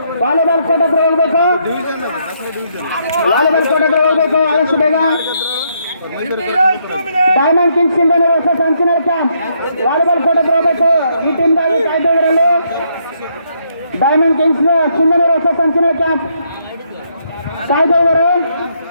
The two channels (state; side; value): inverted; both; correlation -0.74